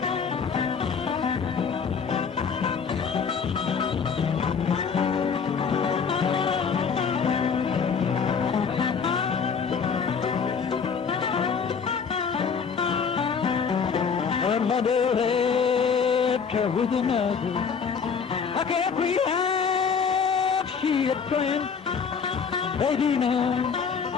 Her mother left her with another. I can't realize she had planned. Baby now,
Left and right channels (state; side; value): quieter; right; 6.2 dB